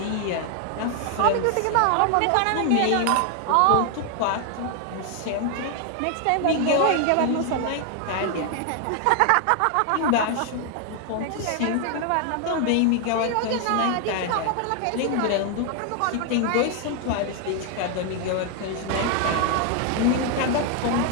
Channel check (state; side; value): different; both; correlation 0.00